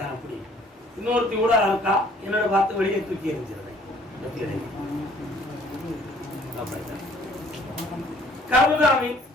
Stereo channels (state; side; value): normal; both; correlation 0.58